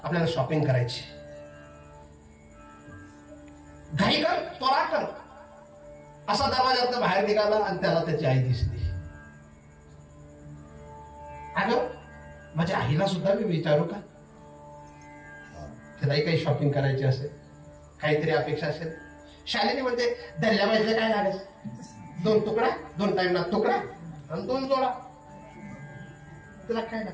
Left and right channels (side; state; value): both; identical; correlation 1.00